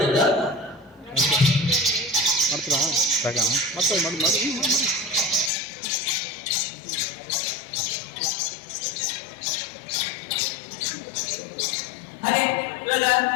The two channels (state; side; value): drops out; right; at 5.5 s